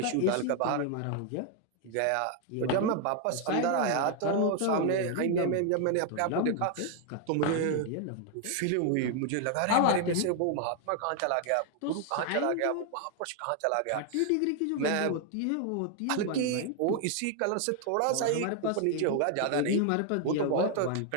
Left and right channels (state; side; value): different; both; correlation 0.00